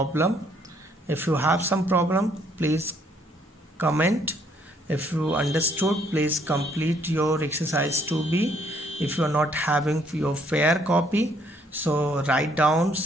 please comment. If you understood, please complete your exercise 2b. If you are not having your fair copy, so write down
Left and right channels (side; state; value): both; normal; correlation 0.66